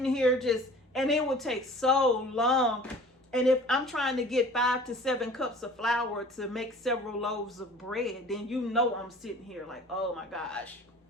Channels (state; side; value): normal; both; correlation 0.46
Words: here just, and it would take so long. And if I'm trying to get 5 to 7 cups of flour to make several loaves of bread, then you know I'm sitting here like, oh my gosh,